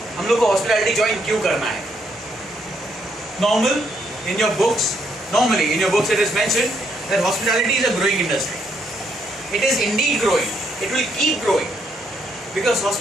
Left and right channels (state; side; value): normal; both; correlation 0.74